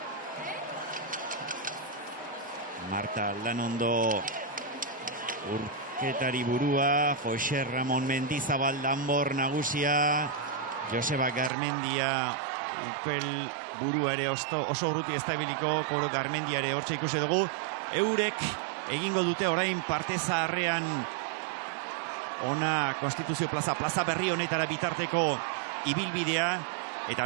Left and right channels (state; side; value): drops out; left; at 11.5 s